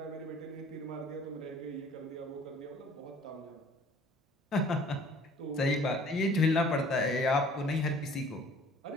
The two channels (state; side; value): normal; both; correlation 0.52